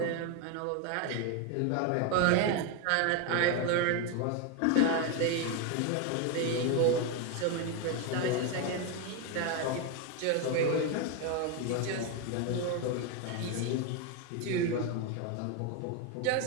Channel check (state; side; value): different; both; correlation 0.02